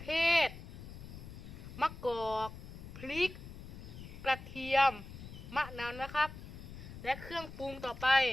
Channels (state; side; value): noise; left; rumble, 12 dB below the sound